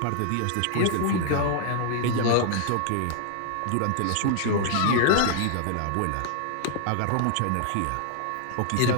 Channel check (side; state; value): both; different; correlation 0.00